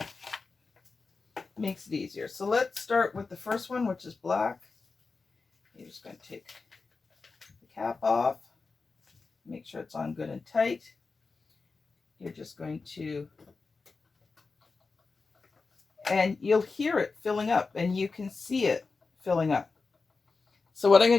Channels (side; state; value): right; quieter; 4.3 dB